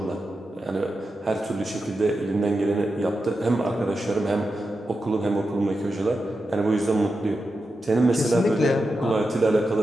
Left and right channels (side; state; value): both; normal; correlation 0.89